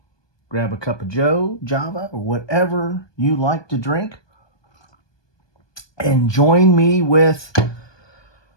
Grab a cup of Joe, Java, or whatever you like to drink, and join me with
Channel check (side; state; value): right; late; 1.2 ms